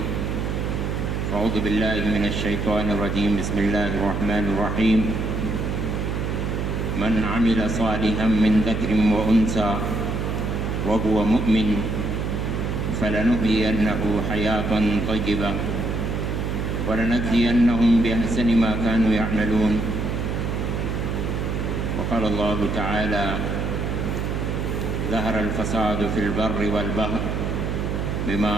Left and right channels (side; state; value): right; noise; hum, 1 dB below the sound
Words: أعوذ بالله من الشيطان الرجيم بسم الله الرحمن الرحيم من عمل صالحا من ذكر وأنثى وهو مؤمن فلنحيينه حياة طيبة ولنجزينهم بأحسن ما كانوا يعملون وقال الله تعالى ظهر الفساد في البر والبحر بما